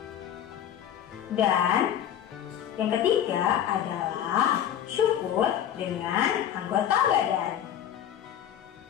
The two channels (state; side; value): quieter; right; 10.2 dB